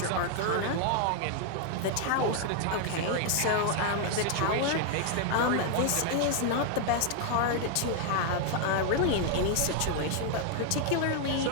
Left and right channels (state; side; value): different; both; correlation 0.00